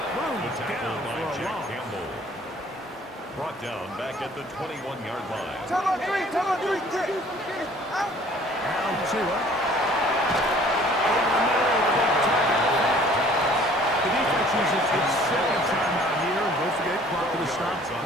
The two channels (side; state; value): both; normal; correlation 0.54